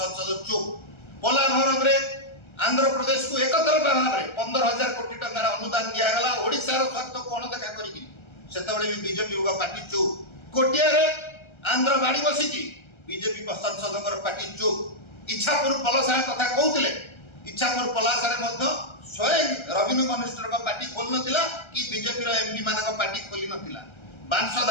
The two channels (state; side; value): late; right; 1.3 ms